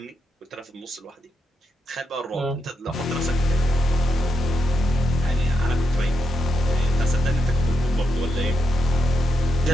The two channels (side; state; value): both; normal; correlation 0.82